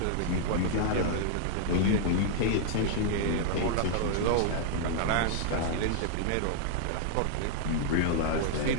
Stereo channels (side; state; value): both; different; correlation -0.01